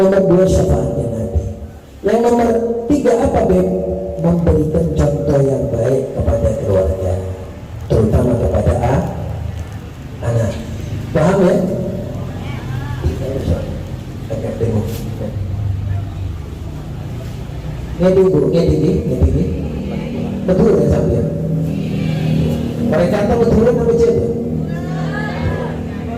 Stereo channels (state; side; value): identical; both; correlation 1.00